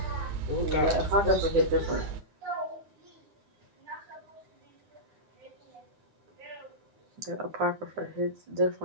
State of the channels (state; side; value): late; left; 9.7 ms